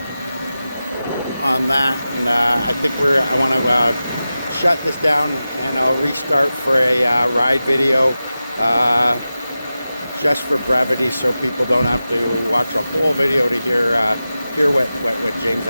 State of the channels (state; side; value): inverted; both; correlation -0.94